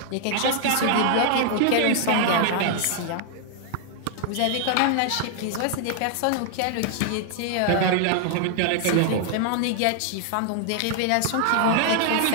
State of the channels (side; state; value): both; different; correlation 0.00